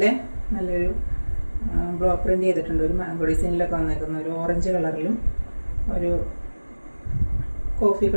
നല്ലൊരു ബ്ലോക്ക് പ്രിന്റ് ചെയ്തിട്ടുണ്ട്. ഒരു മാംഗോ ഡിസൈനിലൊക്കെ വന്നേക്കുന്ന ഒരു ഓറഞ്ച് കളറിലും ഒരു കോഫി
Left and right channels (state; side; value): inverted; both; correlation -1.00